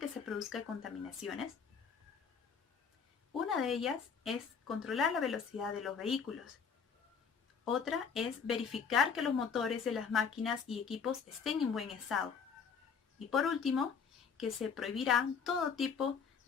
se produzcan contaminaciones? Una de ellas es controlar la velocidad de los vehículos. Otra es verificar que los motores de las máquinas y equipos estén en buen estado. Y por último, que se prohibirá todo tipo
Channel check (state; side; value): quieter; right; 6.3 dB